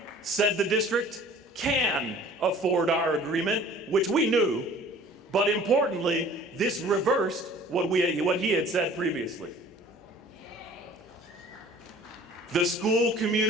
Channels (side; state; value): both; normal; correlation 0.49